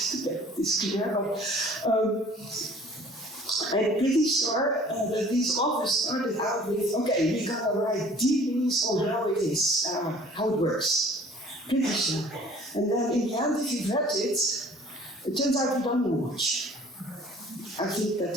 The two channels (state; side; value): normal; both; correlation 0.51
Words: get this clear, but I'm pretty sure that these authors started out with, okay, we got to write deep news on how it is, how it works. Pretty sure. And then in the end, if you've read it, it turns out you don't know much. I think that